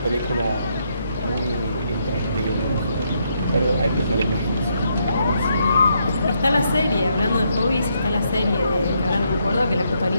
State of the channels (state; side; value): inverted; both; correlation -0.77